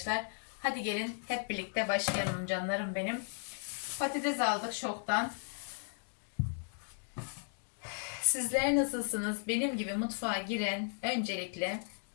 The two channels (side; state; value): right; silent; 54 dB below the other